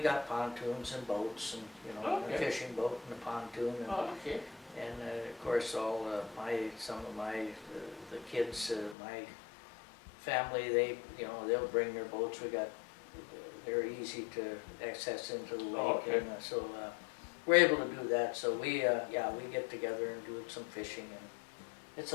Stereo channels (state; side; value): drops out; right; at 9.0 s